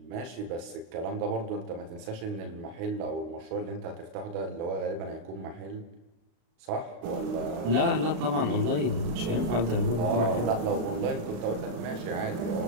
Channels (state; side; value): late; left; 35 ms